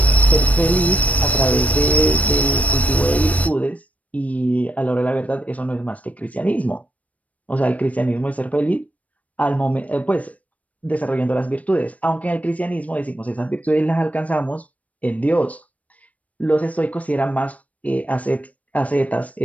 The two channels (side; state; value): right; late; 0.068 ms